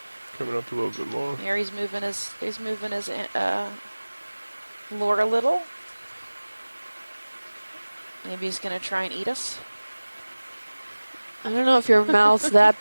Coming up a little bit more. there he's moving his lure a little. Maybe he's gonna try and eat us. I don't know if your mouth's that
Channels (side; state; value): both; inverted; correlation -1.00